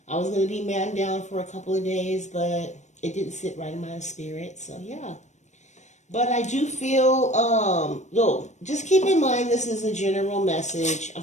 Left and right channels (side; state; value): right; late; 0.34 ms